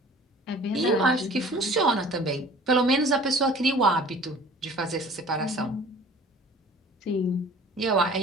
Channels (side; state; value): both; normal; correlation 0.47